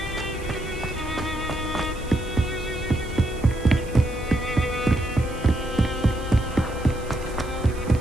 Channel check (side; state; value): right; noise; hiss, 21 dB below the sound